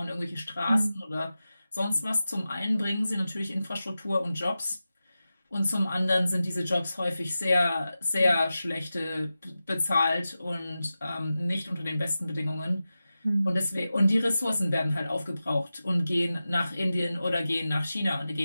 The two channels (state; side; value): inverted; both; correlation -0.93